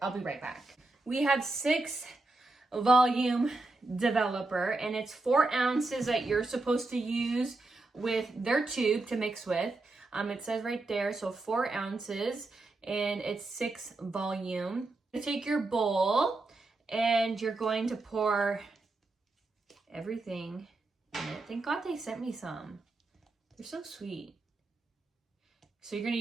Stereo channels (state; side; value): quieter; left; 3.2 dB